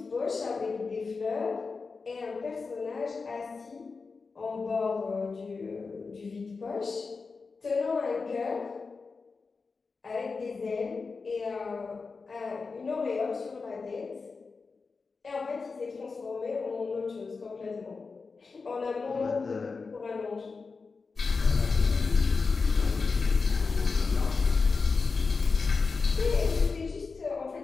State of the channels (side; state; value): right; quieter; 4.5 dB